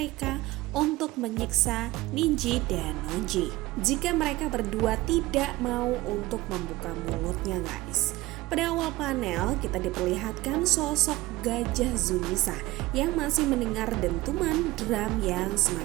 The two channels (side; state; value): left; quieter; 18.9 dB